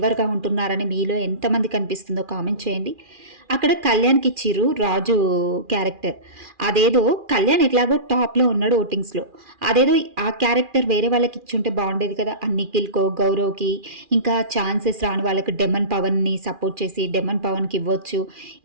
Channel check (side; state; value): left; late; 2.4 ms